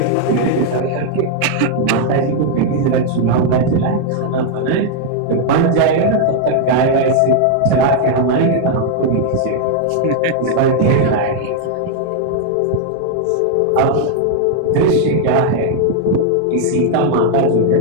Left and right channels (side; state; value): both; different; correlation 0.00